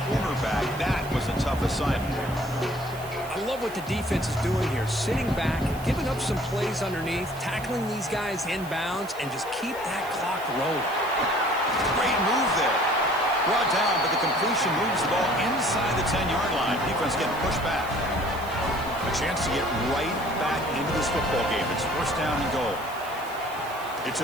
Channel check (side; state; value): right; noise; hiss, 18 dB below the sound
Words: cornerback. That was a tough assignment. I love what the defense is doing here. Sitting back, giving up some plays underneath, tackling these guys inbounds, and just keep that clock rolling. Great move there. Brought down, but the completion moves the ball inside the 10-yard line. Defense getting pushed back. A chance to get right back into this football game. It's first down and goal. It's